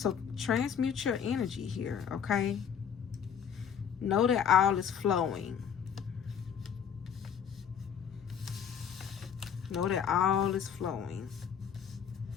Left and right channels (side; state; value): right; quieter; 8.0 dB